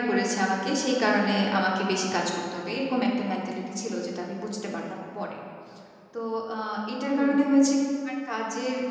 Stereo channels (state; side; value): identical; both; correlation 1.00